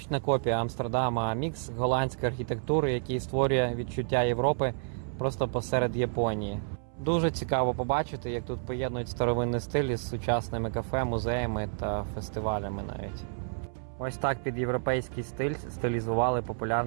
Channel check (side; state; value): left; silent; 58 dB below the other